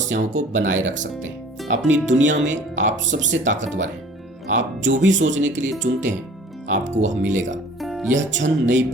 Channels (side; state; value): both; normal; correlation 0.49